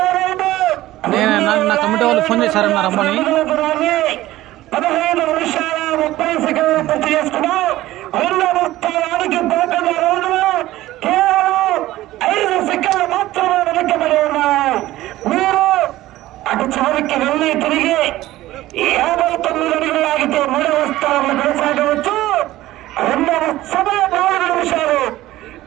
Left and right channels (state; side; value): quieter; left; 16.0 dB